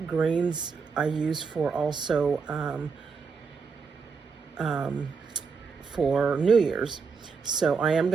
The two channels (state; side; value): quieter; left; 5.3 dB